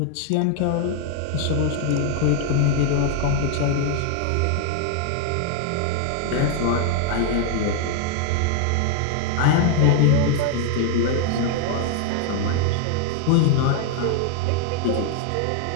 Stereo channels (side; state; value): both; different; correlation 0.00